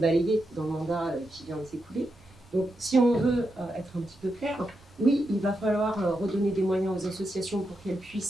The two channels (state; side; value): noise; right; rumble, 28 dB below the sound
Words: dans le mandat qui vient de s'écouler. Donc, si on veut être un petit peu clair, oui, il va falloir redonner des moyens aux associations pour qu'elles